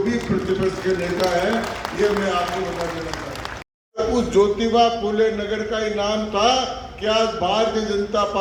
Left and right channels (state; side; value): identical; both; correlation 1.00